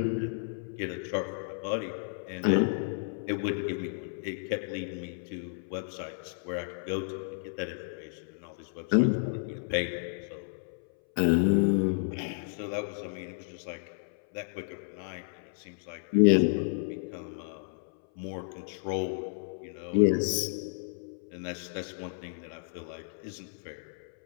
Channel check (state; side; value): silent; right; 56 dB below the other